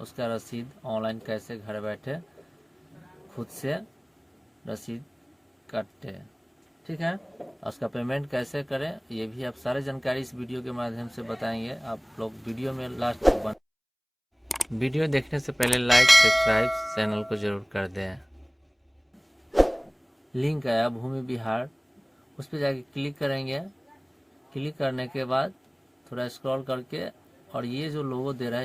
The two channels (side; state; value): both; identical; correlation 1.00